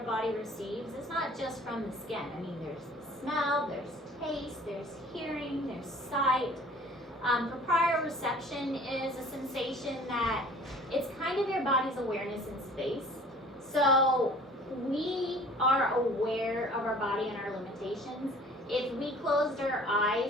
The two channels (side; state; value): both; normal; correlation 0.49